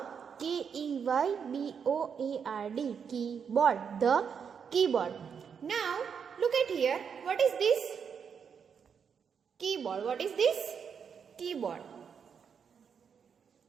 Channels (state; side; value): quieter; left; 6.9 dB